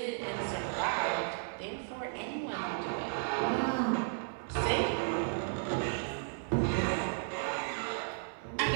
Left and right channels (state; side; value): silent; left; digital silence